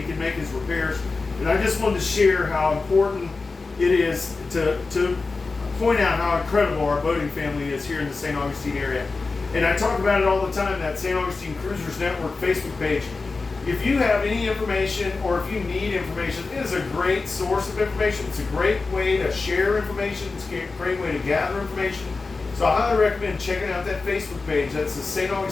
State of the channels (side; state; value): right; quieter; 4.0 dB